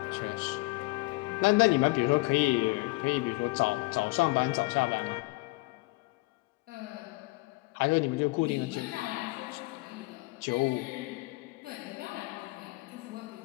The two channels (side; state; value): right; quieter; 24.0 dB